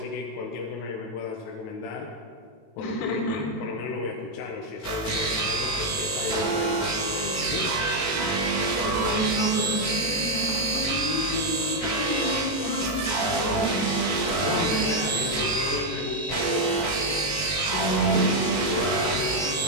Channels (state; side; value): late; right; 18 ms